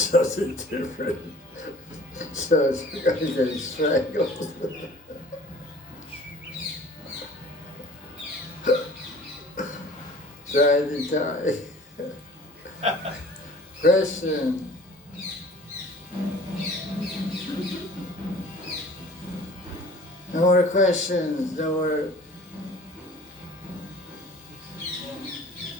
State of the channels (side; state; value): both; normal; correlation 0.48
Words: different. So it's going to get strangled. Trying to die. Question. No more questions, no more.